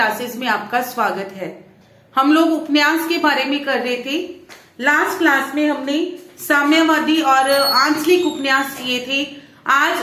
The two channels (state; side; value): identical; both; correlation 1.00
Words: में आपका स्वागत है। हम लोग उपन्यास के बारे में कर रहे थे। लास्ट क्लास में हमने साम्यवादी और आंचलिक उपन्यास किए थे।